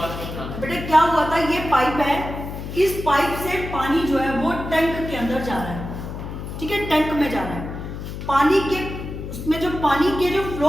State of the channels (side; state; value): left; noise; hum, 8 dB below the sound